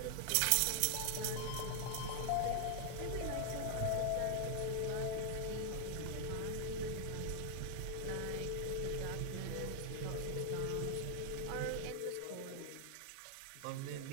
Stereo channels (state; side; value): different; both; correlation 0.00